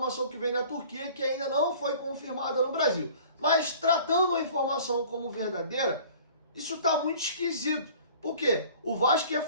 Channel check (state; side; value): inverted; both; correlation -0.48